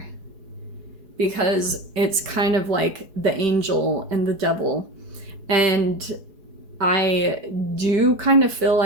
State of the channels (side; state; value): left; late; 4.7 ms